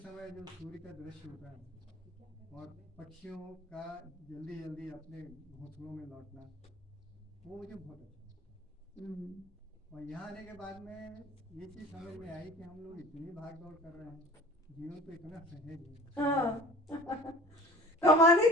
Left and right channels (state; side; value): normal; both; correlation 0.43